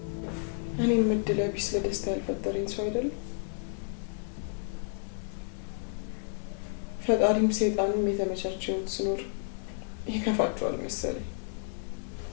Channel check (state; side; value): silent; right; digital silence